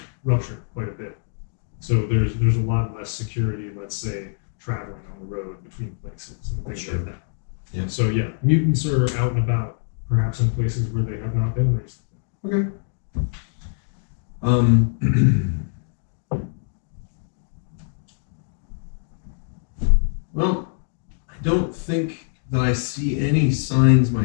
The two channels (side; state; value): right; silent; digital silence